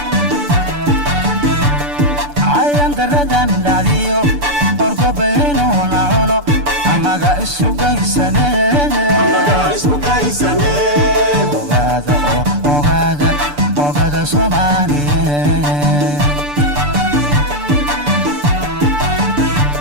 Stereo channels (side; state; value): left; late; 6.9 ms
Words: ayaan daradan dhacdiyo orgobaynuuna cuno annaga isu daysane isku kaysane ogaada ogaada ogaada soomaaliyeed